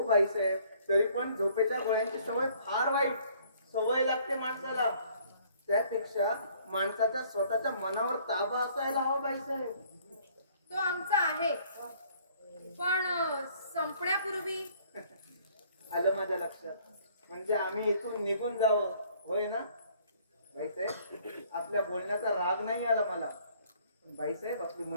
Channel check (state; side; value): inverted; both; correlation -0.59